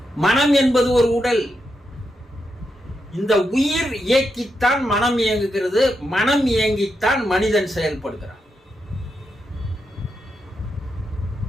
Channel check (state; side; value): normal; both; correlation 0.85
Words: மனம் என்பது ஒரு உடல். இந்த உயிர் இயக்கித்தான் மனம் இயங்குகிறது. மனம் இயங்கித்தான் மனிதன் செயல்படுகிறான்.